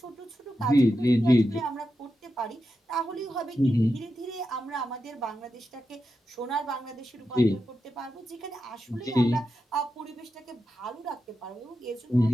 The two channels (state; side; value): normal; both; correlation 0.88